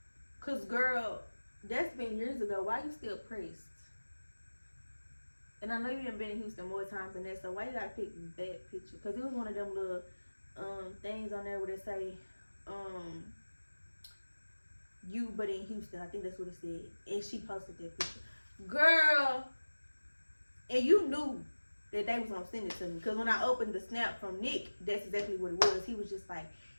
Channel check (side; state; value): both; inverted; correlation -1.00